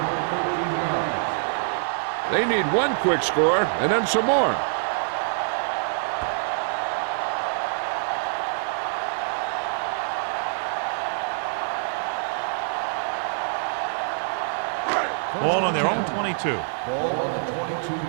They need one quick score and then some more. Ball on their own 22. Ball on the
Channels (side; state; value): left; silent; digital silence